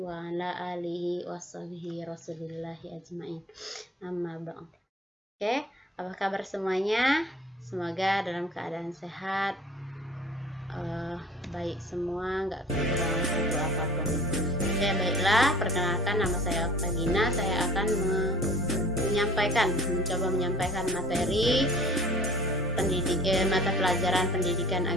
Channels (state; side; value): normal; both; correlation 0.48